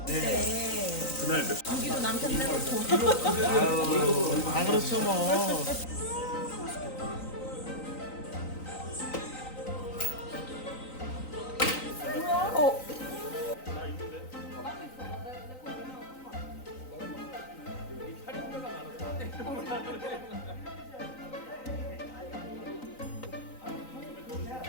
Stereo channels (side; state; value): right; late; 3.9 ms